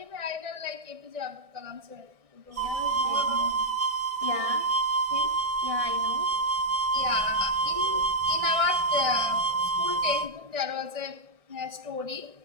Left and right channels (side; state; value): left; late; 1.6 ms